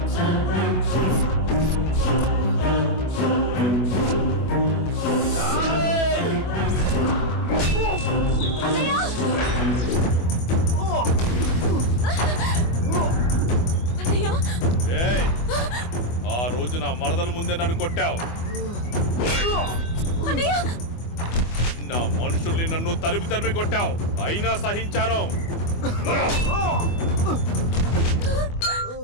ఆ రోజు నా మరదల ముందే నన్ను కొట్టావు. నా మనుషుల్ని నన్ను తరిమి తరిమి కొట్టావు, అయినా సహించాను.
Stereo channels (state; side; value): late; right; 24 ms